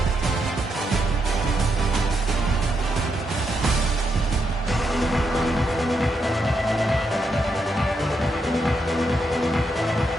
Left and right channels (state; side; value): normal; both; correlation 0.81